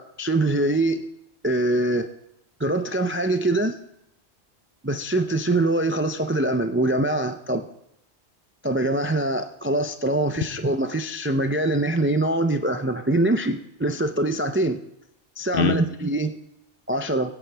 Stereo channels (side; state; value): both; normal; correlation 0.33